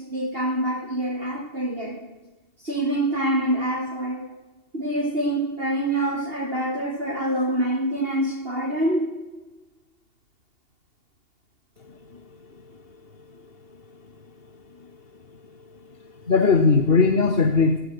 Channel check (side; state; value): left; late; 2.8 ms